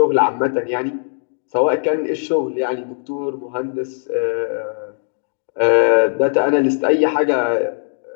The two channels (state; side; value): silent; right; digital silence